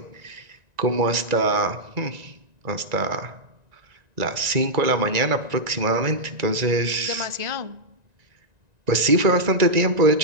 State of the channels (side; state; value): left; late; 1.9 ms